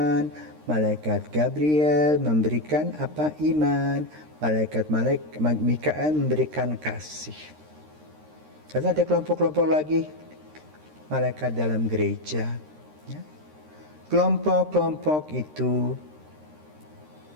malaikat Gabriel memberikan iman, malaikat Mikael memberikan kasih. Lalu ada kelompok-kelompok lagi, malaikat dalam gereja. Ya. Kelompok-kelompok itu,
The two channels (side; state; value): left; late; 13 ms